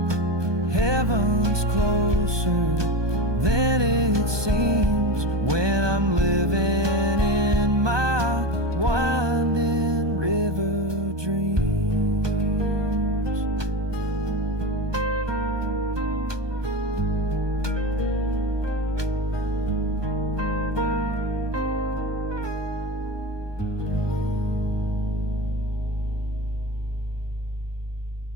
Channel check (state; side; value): late; left; 1.2 ms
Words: Heaven's closer than it seems when I'm living in my winding river dreams.